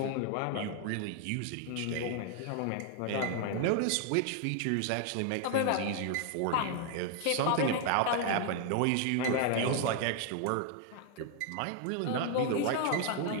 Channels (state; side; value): different; both; correlation 0.00